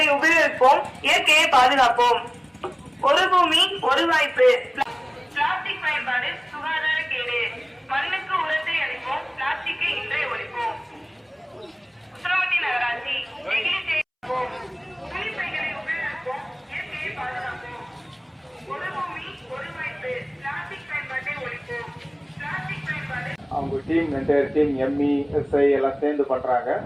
உபயோகிப்போம், இயற்கையை பாதுகாப்போம். ஒரு பூமி ஒரு வாய்ப்பு. பிளாஸ்டிக் பயன்பாடு சுகாதார கேடு. மண்ணுக்கு உரத்தை அளிப்போம், பிளாஸ்டிக்கை இன்றே ஒழிப்போம். உசிலம்பட்டி நகராட்சி நெகிழி சேகரிப்போம், துணிப்பைகளை உபயோகிப்போம், இயற்கையை பாதுகாப்போம். ஒரு பூமி ஒரு வாய்ப்பு. பிளாஸ்டிக் பயன்பாட்டை ஒழிப்போம். பிளாஸ்டிக் பயன்பாடு அவங்க team entire team ME SI எல்லாம் சேர்ந்து பண்றாங்க.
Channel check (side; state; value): both; identical; correlation 1.00